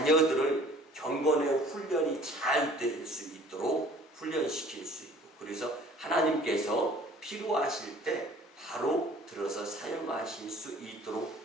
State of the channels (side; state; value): both; normal; correlation 0.51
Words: 경건의 훈련이 잘 될 수 있도록 훈련시킬 수 있고, 그래서 하나님께서 필요하실 때 바로 들어서 사용하실 수 있도록